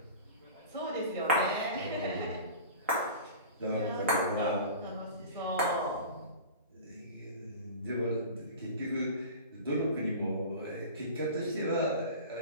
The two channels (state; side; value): inverted; both; correlation -0.36